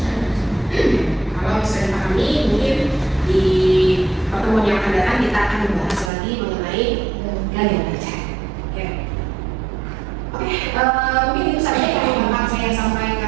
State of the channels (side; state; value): left; drops out; at 6.1 s